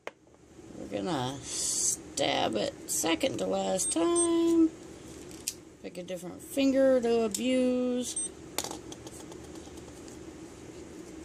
We're gonna stab it second to last time. Pick a different finger to abuse.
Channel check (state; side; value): identical; both; correlation 1.00